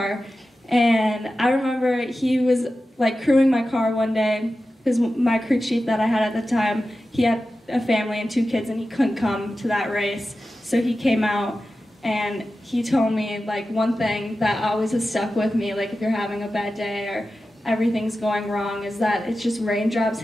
And I remember he was like crewing my car one day because my crew chief that I had at the time, he had a family and 2 kids and he couldn't come to that race. So he came out and he told me like one thing that always has stuck with me, like if you're having a bad day or everything's going wrong, is that it's just raindrops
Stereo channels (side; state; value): both; normal; correlation 0.93